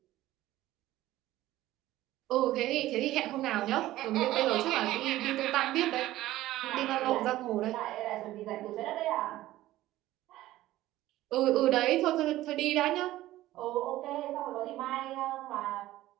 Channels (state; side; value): quieter; left; 15.6 dB